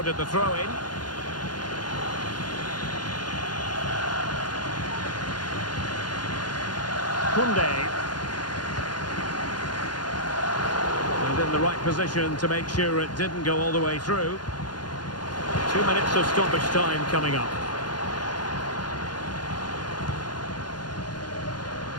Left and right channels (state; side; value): late; right; 0.70 ms